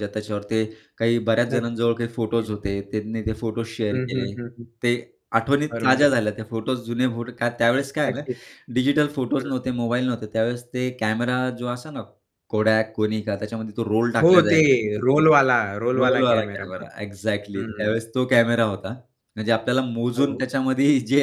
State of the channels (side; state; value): both; identical; correlation 1.00